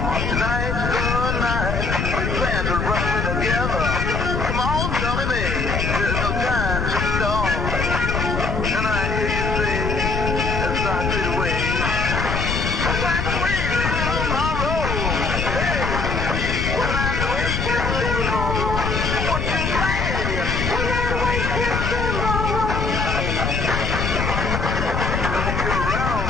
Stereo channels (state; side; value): noise; left; rumble, 1 dB below the sound